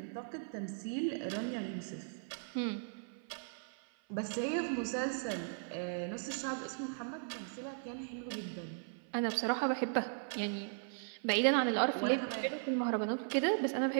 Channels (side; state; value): left; silent; 53 dB below the other